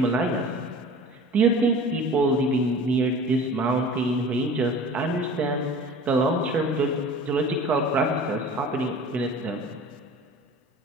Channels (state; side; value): normal; both; correlation 0.41